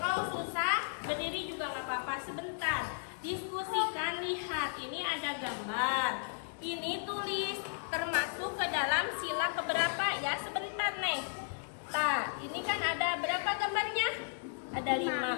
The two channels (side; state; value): right; silent; digital silence